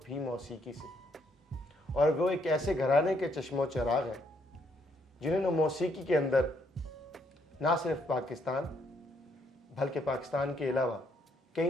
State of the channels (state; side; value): normal; both; correlation 0.72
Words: भी मौसीकी से, और वो एक ऐसे घराने के चश्मो चराग हैं जिन्होंने मौसीकी के अंदर ना सिर्फ पाकिस्तान बल्कि पाकिस्तान के अलावा